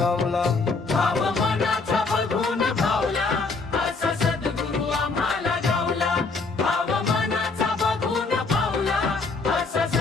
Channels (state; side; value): quieter; right; 4.1 dB